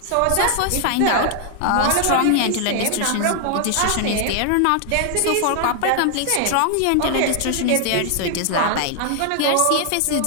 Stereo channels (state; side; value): different; both; correlation 0.00